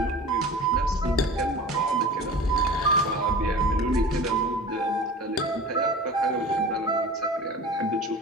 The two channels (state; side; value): normal; both; correlation 0.37